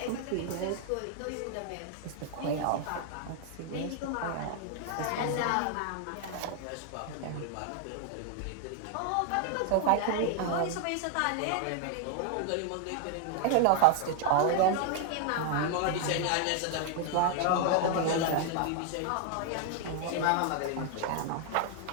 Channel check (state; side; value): different; both; correlation 0.00